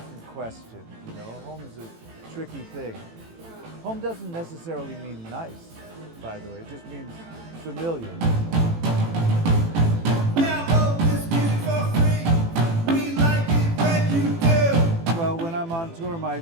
question, you know. Home is a tricky thing. Home doesn't necessarily mean nice, by the way. It just means familiar. Well, when I'm on tour, my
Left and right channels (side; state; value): left; late; 18 ms